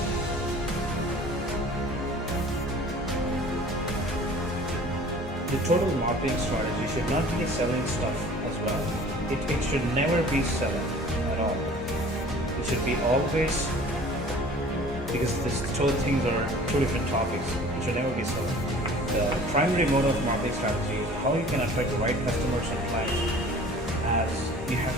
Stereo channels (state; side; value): normal; both; correlation 0.47